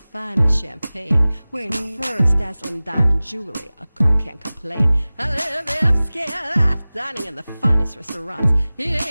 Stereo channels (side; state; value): both; inverted; correlation -0.98